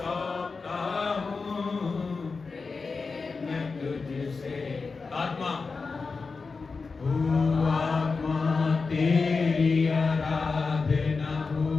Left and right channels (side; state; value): right; quieter; 4.4 dB